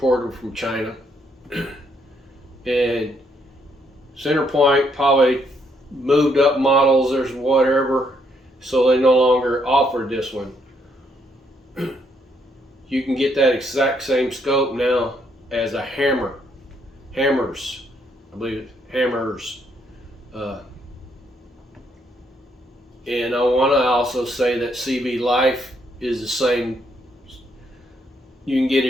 from China, and center point probably moved up models or whatever, so they no longer offered this one. You can get that exact same scope now as a Hammers, I believe it's Hammers. And I want to also say that CV Life is the same. You can get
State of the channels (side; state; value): both; normal; correlation 0.73